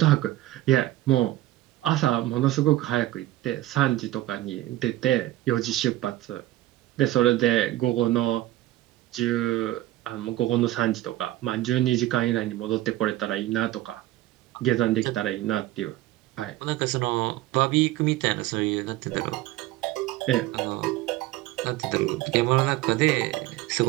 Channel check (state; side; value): quieter; left; 15.7 dB